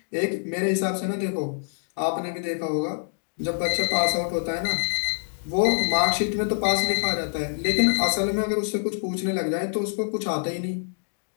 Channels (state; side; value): silent; right; digital silence